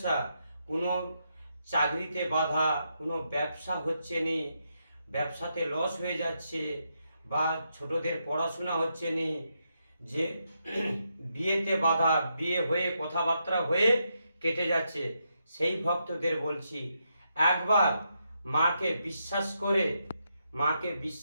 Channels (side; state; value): both; inverted; correlation -0.81